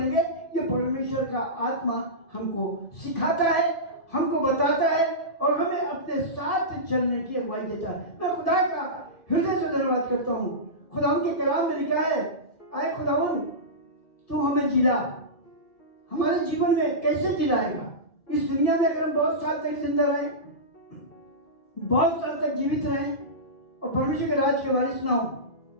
ये परमेश्वर का आत्मा हमको सिखाता है, हमको बताता है और हमें अपने साथ चलने की अगुवाई देता है। मैं खुदा का हृदय से धन्यवाद करता हूँ। खुदा के कलाम में लिखा है, आए खुदावन तू हमें जिला, हमारे जीवन में कैसे जिलाएगा? इस दुनिया में अगर हम बहुत साल तक जिंदा रहें, बहुत साल तक जीवित रहें और परमेश्वर के राज के वारिस ना हो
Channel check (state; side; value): late; right; 2.4 ms